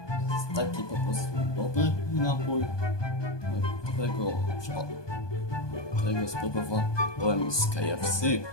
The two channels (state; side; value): late; right; 1.2 ms